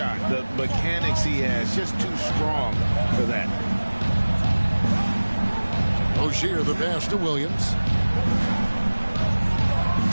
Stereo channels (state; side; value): inverted; both; correlation -1.00